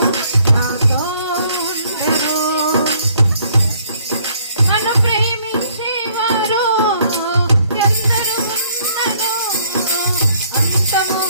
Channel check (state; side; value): inverted; both; correlation -0.63